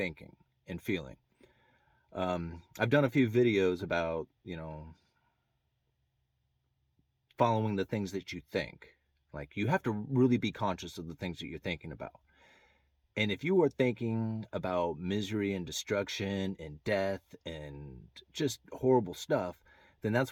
and feeling. I've done a few videos about, following the things that you think. Like, you have to really be conscious of the things that you're thinking about. And if you are thinking about misery and destruction and death and just horrible stuff, then that's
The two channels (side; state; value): both; identical; correlation 1.00